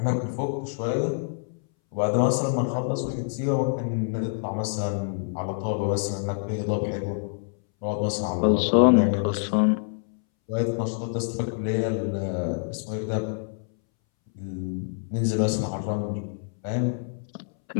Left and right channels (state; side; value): silent; right; 61 dB below the other